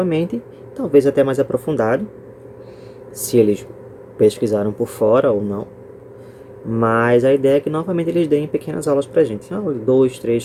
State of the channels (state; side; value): identical; both; correlation 1.00